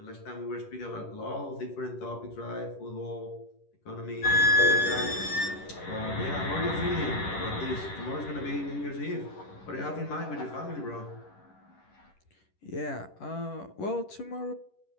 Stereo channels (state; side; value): late; right; 11 ms